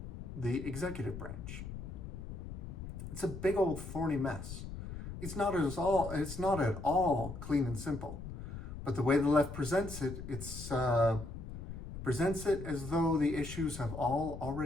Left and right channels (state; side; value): noise; left; rumble, 9 dB below the sound